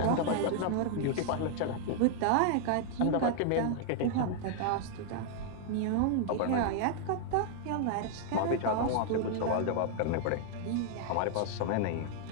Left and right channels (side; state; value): both; different; correlation 0.00